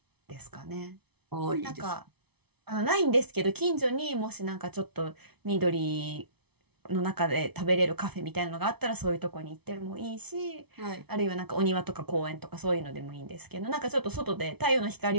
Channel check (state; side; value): late; left; 0.99 ms